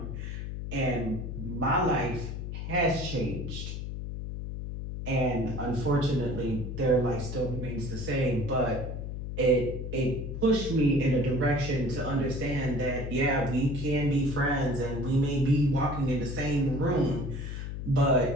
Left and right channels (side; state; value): left; noise; hum, 6 dB below the sound